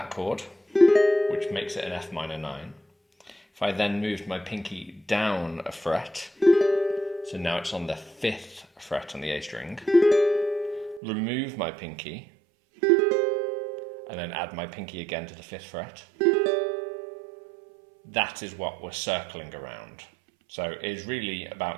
chord, which makes it an F minor 9. If I then moved my pinky down a fret, so now it's on the 5th fret on the A string, remove my pinky, and then add my pinky again to the 5th fret. That is what we're circling around. So it's really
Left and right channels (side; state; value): left; drops out; at 11.0 s